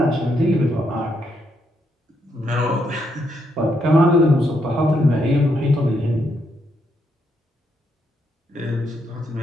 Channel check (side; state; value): both; normal; correlation 0.77